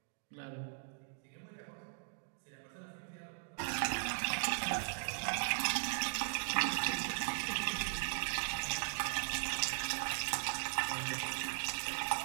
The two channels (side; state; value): left; silent; digital silence